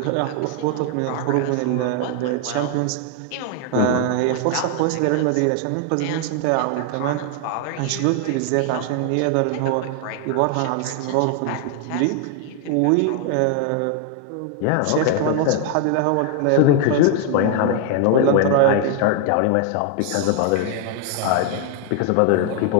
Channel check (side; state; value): both; different; correlation 0.00